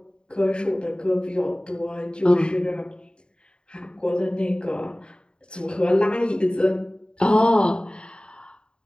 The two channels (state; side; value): late; right; 0.050 ms